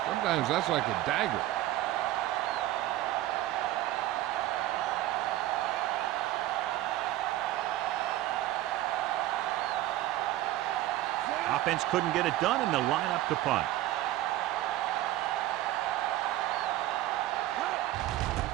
sometimes that's like a dagger. Offense couldn't get it done, and they'll line up to punt.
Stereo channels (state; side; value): quieter; left; 15.0 dB